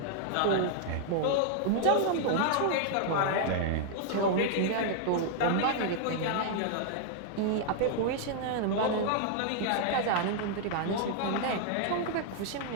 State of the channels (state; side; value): different; both; correlation -0.01